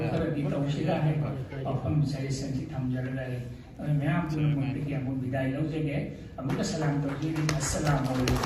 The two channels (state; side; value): identical; both; correlation 1.00